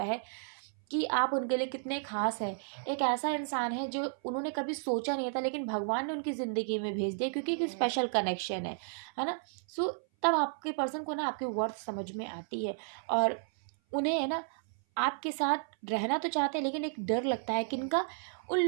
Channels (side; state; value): left; silent; 56 dB below the other